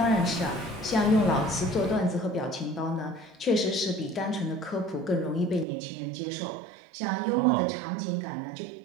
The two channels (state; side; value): drops out; left; at 5.7 s